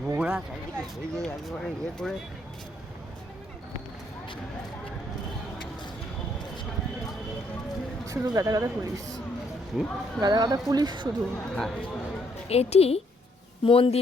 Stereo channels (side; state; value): both; normal; correlation 0.70